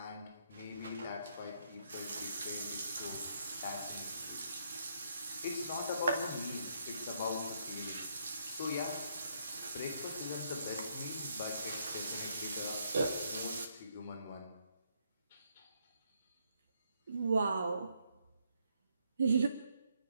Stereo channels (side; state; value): both; inverted; correlation -0.73